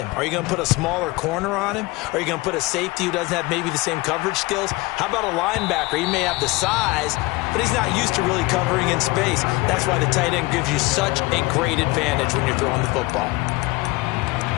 Are you going to put a smaller corner on him? Are you going to put a safety who doesn't have maybe the same coverage skills? How about a linebacker? He may have the size, but he's not used to really covering in space. That's why the tight end gives you such a great advantage when you're throwing the football.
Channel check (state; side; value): quieter; right; 22.6 dB